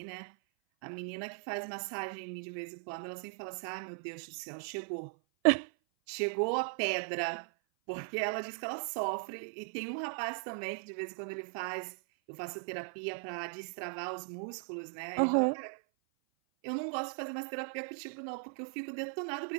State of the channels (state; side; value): silent; left; 52 dB below the other